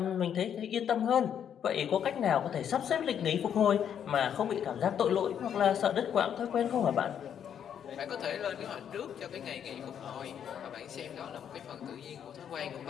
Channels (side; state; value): right; quieter; 8.8 dB